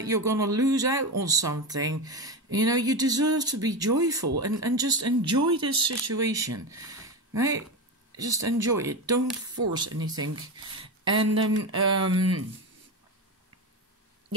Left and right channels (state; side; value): normal; both; correlation 0.18